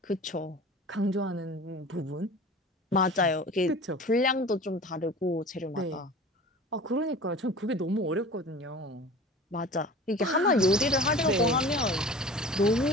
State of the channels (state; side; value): normal; both; correlation 0.39